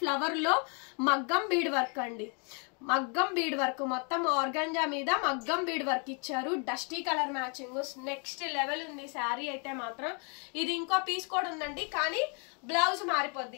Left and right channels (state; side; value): quieter; right; 37.1 dB